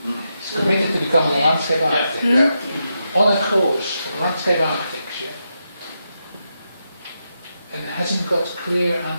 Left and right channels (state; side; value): inverted; both; correlation -0.85